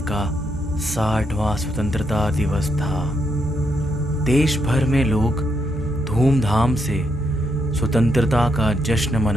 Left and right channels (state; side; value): normal; both; correlation 0.78